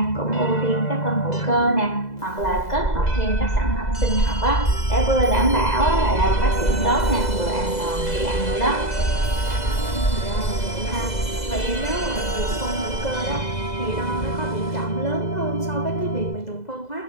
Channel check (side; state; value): right; late; 2.0 ms